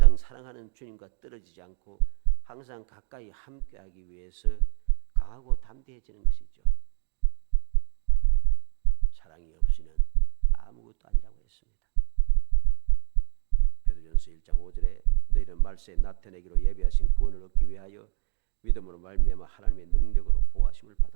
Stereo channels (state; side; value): silent; left; digital silence